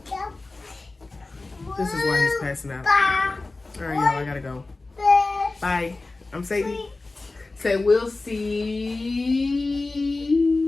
This is why he's passing out. All right, y'all, I gotta go. Bye. I'm Sadie. Say, we'll see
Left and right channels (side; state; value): right; quieter; 3.3 dB